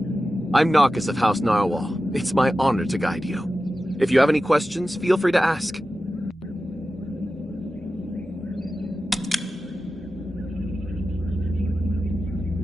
I'm Narcus of House Narwhal. It's my honor to guide you. If you have any questions, feel free to ask.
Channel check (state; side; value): normal; both; correlation 0.93